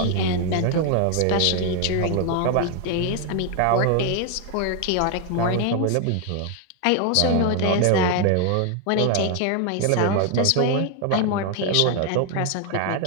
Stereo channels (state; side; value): different; both; correlation 0.00